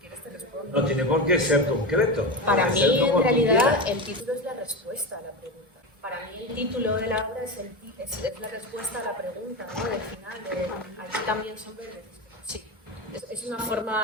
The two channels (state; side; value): normal; both; correlation 0.20